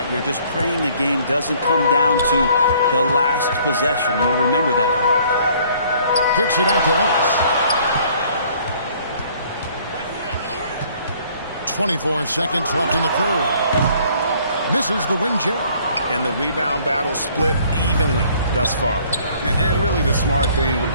you're just praying the game doesn't come down to the last possession. You'll remember that one. Kicks it out to Ellis. 24 seconds left in the third. Misses the wing Jerry. And the rebound battle split evenly thus far. And really the smart thing would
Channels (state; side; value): inverted; both; correlation -0.59